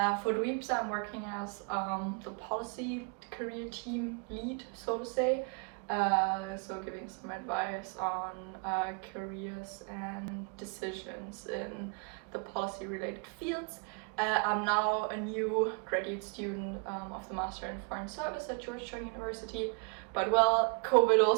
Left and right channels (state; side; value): quieter; left; 35.4 dB